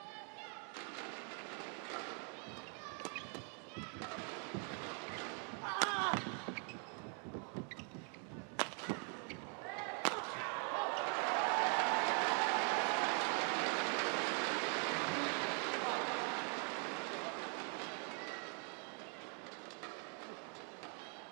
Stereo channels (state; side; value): quieter; left; 39.4 dB